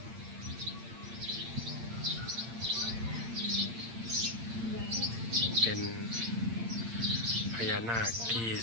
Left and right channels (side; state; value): left; late; 8.8 ms